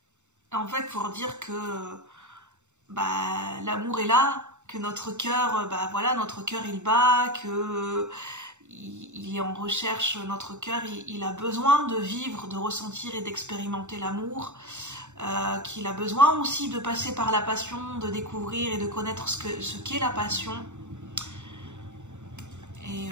En fait, pour dire que l'amour est là, que notre cœur, notre cœur il bat, que il est en recherche, notre cœur il a besoin de vivre, de ressentir et d'expérimenter l'amour, qu'il a besoin aussi de passer par la passion, de découvrir et de connaître ce qu'est la passion. Et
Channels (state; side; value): late; left; 0.84 ms